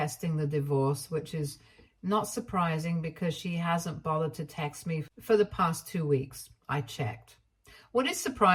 the divorce, which is not surprising because she hasn't bothered to text me for the past 2 weeks. I checked. What is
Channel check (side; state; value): both; identical; correlation 1.00